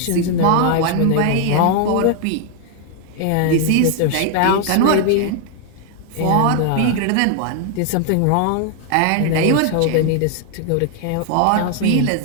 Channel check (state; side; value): different; both; correlation 0.00